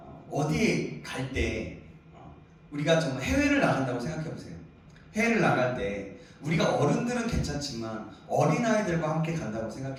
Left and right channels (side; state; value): both; identical; correlation 1.00